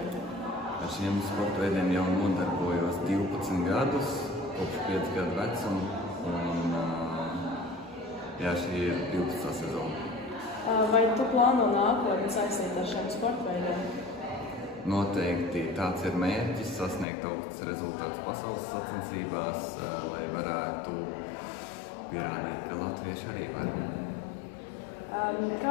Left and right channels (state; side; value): drops out; right; at 17.1 s